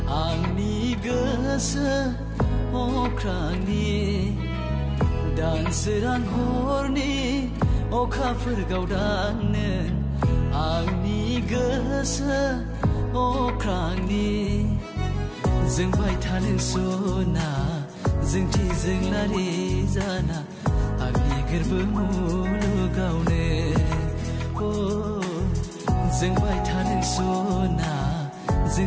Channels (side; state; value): both; identical; correlation 1.00